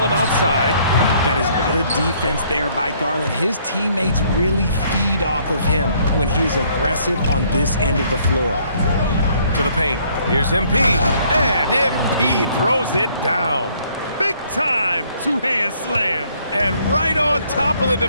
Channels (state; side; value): inverted; both; correlation -0.64